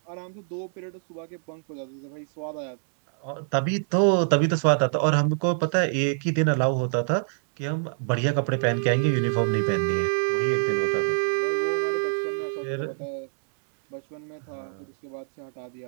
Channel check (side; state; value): left; silent; 61 dB below the other